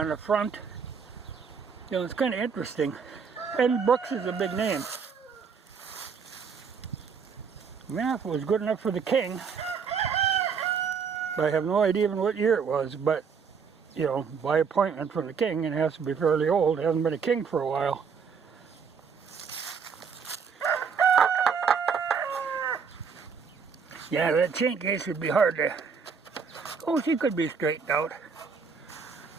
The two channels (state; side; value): quieter; left; 6.0 dB